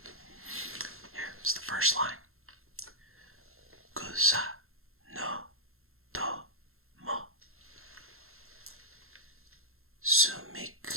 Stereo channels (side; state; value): left; late; 0.62 ms